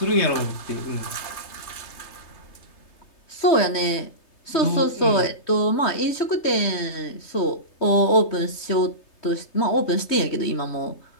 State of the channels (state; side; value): late; right; 3.3 ms